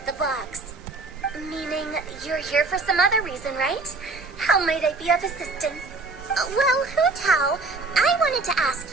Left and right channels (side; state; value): left; quieter; 3.6 dB